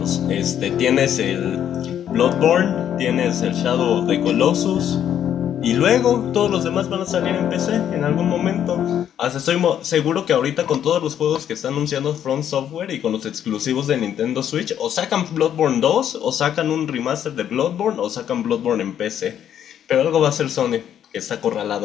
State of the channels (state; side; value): quieter; right; 9.9 dB